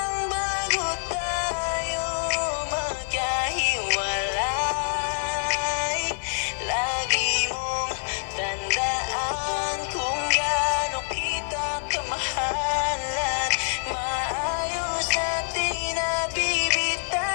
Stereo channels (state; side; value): silent; right; digital silence